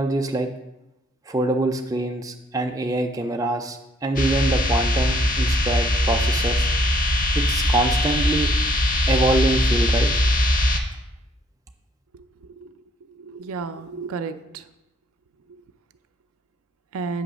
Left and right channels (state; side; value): normal; both; correlation 0.65